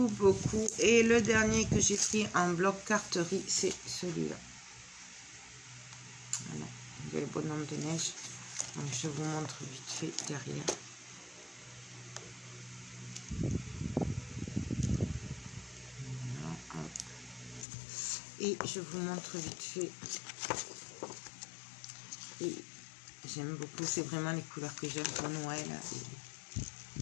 Et le dernier que j'ai pris en bloc carterie, c'est celui-là. Voilà. Il y a le bonhomme de neige. Donc, je vous montre vite fait derrière. Voilà, hop. Et je vous montre vite fait. Et j'aime beaucoup, c'est vraiment les couleurs que j'aime pour Noël.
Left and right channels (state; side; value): drops out; right; at 17.7 s